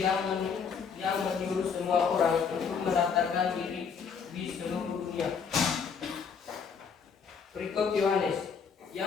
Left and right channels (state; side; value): quieter; right; 6.2 dB